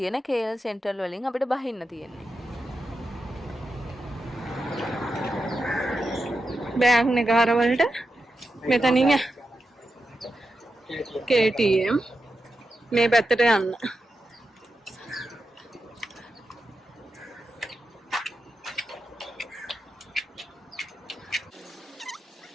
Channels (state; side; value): normal; both; correlation 0.89